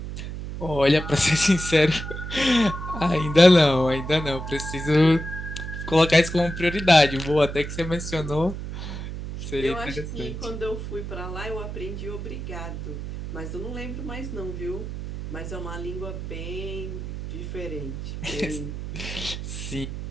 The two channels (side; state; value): right; noise; hum, 7 dB below the sound